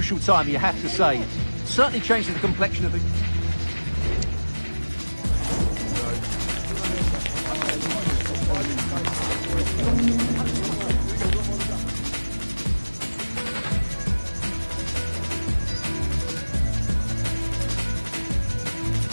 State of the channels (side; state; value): both; inverted; correlation -1.00